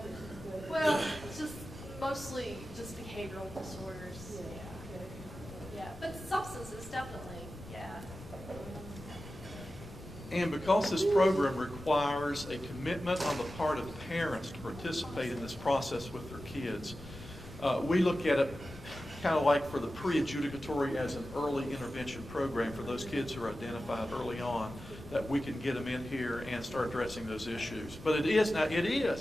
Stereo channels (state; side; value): noise; left; rumble, 15 dB below the sound